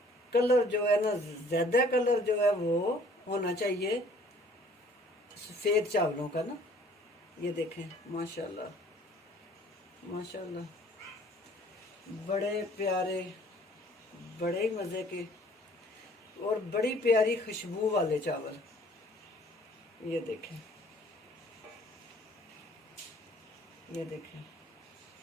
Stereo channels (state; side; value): normal; both; correlation 0.56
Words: कलर जो है ना, ज्यादा कलर जो है वो होना चाहिए सफेद चावलों का ना। ये देखें माशाल्लाह माशाल्लाह, बड़े प्यारे, बड़े मज़े के और बड़ी प्यारी खुशबू वाले चावल। ये देखें, ये देखें